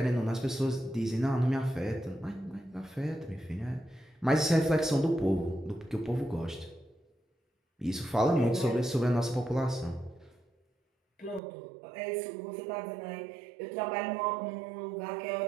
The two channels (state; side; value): drops out; left; at 11.4 s